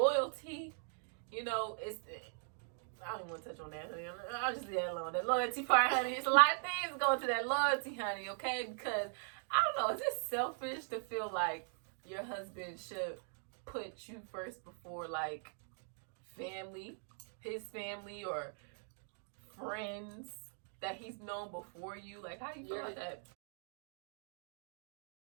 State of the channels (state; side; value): silent; left; 51 dB below the other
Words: you know, I don't even want to touch on that, honey. I'll just leave that alone. That loyalty part, honey. It's a lot of things going to that loyalty, honey, okay? Because, I don't know, is it selfish to feel like your husband should put you first before, like, family, his family, or friends that he's known before you? Like, how do you feel about that?